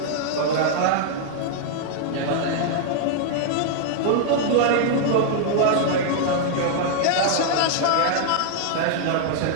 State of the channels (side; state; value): both; different; correlation -0.01